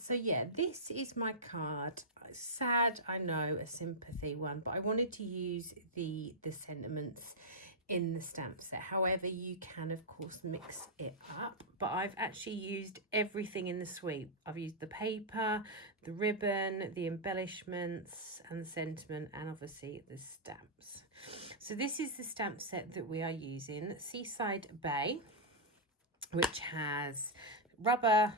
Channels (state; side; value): normal; both; correlation -0.09